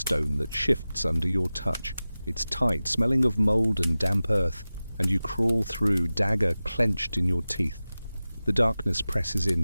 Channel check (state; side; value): inverted; both; correlation -0.96